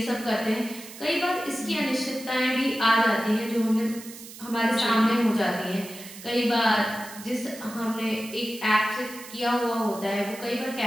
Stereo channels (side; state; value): right; noise; hiss, 15 dB below the sound